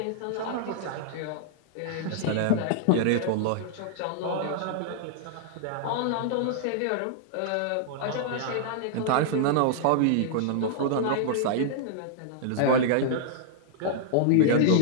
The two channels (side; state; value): both; different; correlation -0.01